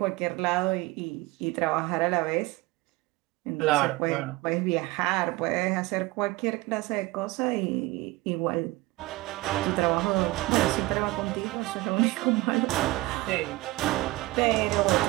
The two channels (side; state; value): left; quieter; 20.4 dB